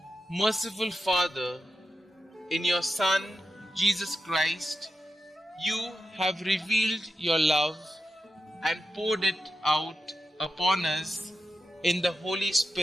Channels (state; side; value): normal; both; correlation 0.90